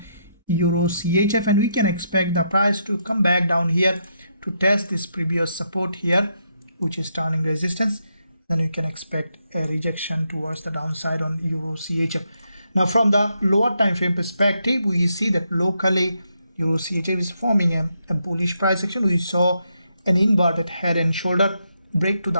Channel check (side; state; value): both; inverted; correlation -0.79